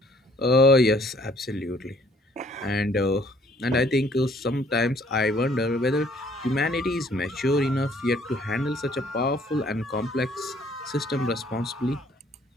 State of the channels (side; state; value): both; normal; correlation 0.61